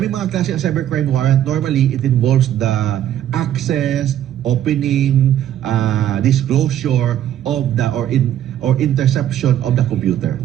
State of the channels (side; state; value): left; quieter; 11.4 dB